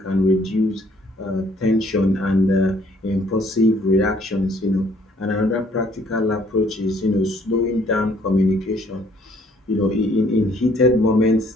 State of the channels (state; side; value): normal; both; correlation 0.62